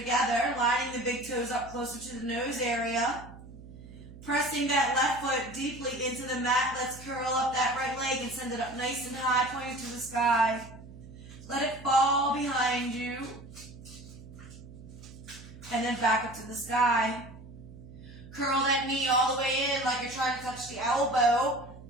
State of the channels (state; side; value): noise; right; hum, 17 dB below the sound